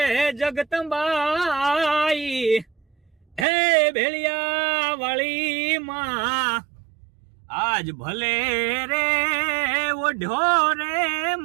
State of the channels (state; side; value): drops out; left; at 3.5 s